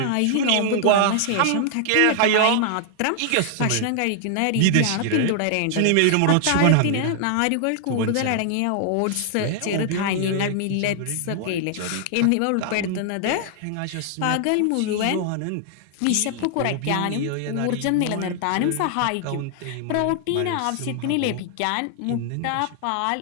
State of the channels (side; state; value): both; different; correlation 0.00